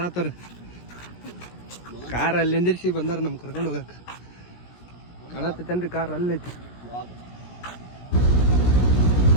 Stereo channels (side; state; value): right; late; 17 ms